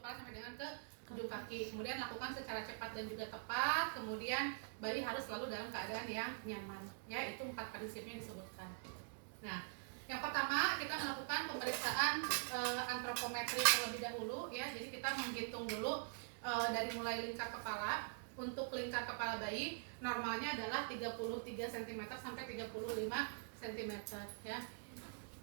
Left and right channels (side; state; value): left; silent; digital silence